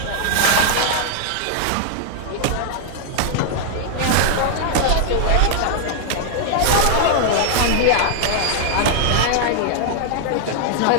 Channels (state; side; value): different; both; correlation -0.01